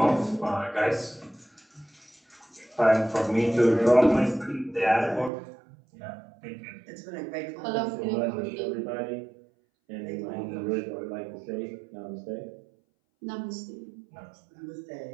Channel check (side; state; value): left; drops out; at 5.3 s